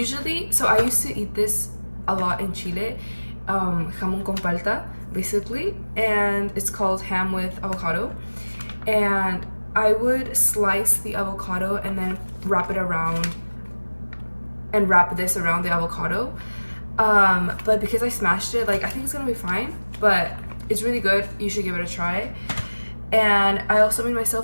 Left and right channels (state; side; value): inverted; both; correlation -1.00